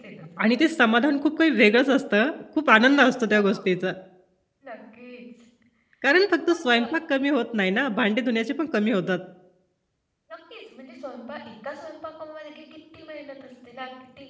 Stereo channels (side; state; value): both; identical; correlation 1.00